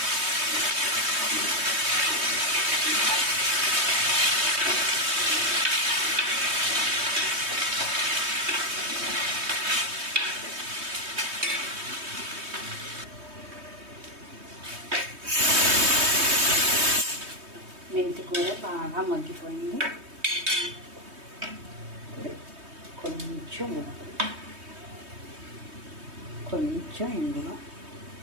మెంతి కూర బాగా మగ్గిపోయింది. కొంచెం ఇందులో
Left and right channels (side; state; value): left; late; 3.2 ms